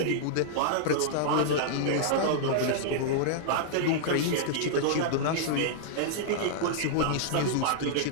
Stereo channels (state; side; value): different; both; correlation -0.02